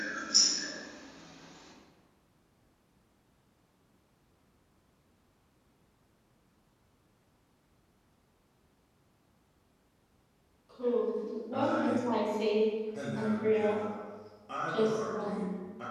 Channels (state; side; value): identical; both; correlation 1.00